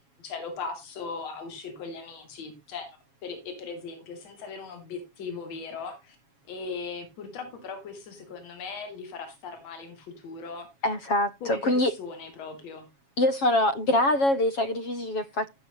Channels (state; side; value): late; right; 7.3 ms